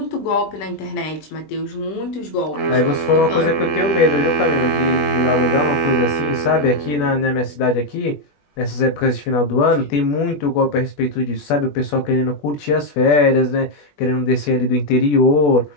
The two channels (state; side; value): late; right; 20 ms